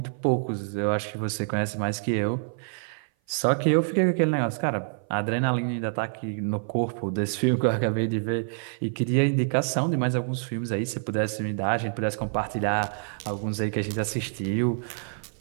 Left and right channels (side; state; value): left; silent; 57 dB below the other